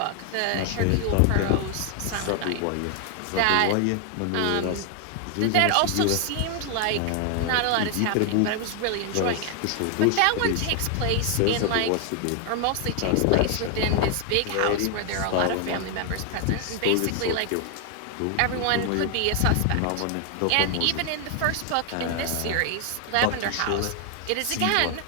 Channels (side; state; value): both; different; correlation 0.00